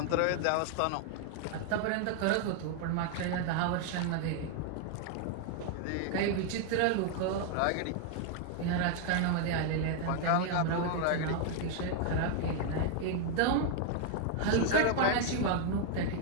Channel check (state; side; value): different; both; correlation 0.00